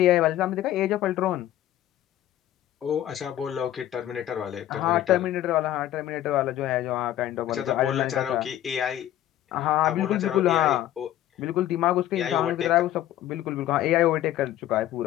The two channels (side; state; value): right; quieter; 12.8 dB